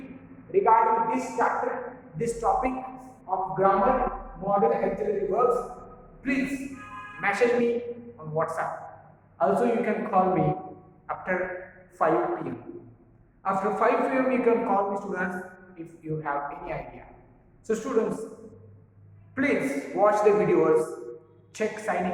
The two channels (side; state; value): both; identical; correlation 1.00